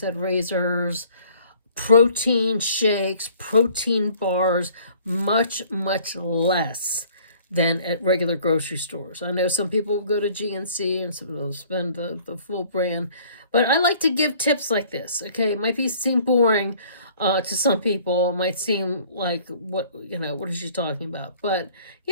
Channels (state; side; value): inverted; both; correlation -0.55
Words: razors, protein shakes, protein bars, much, much less than at regular grocery stores. I know some people will go to GNC and some will spend the full brand, but I like to give tips like this, okay? It might seem boring to some people. It might seem like, what is she talking about? But,